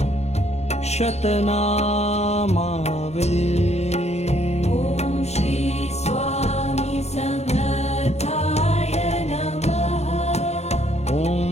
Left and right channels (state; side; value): late; right; 0.31 ms